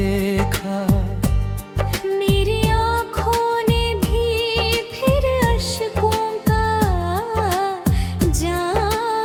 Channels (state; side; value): identical; both; correlation 1.00